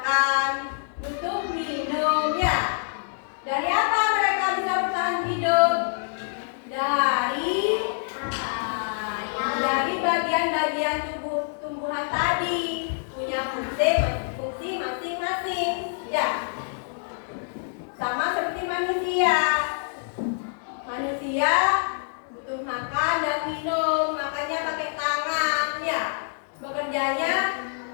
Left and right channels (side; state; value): right; silent; digital silence